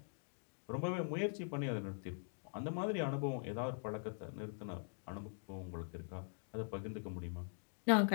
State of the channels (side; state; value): right; silent; digital silence